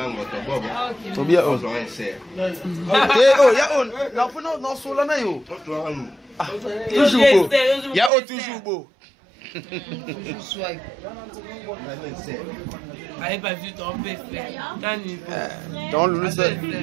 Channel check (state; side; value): drops out; left; at 8.1 s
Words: Tobia on. Oh ya on. La pona dans solana yo. Toujours beau. Ya o toujours beau. Allez pas vu ton PC. Dans le seul.